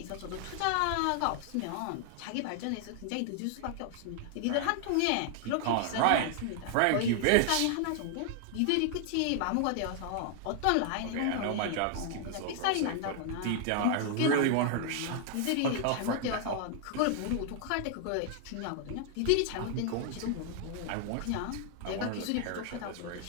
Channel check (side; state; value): both; different; correlation 0.00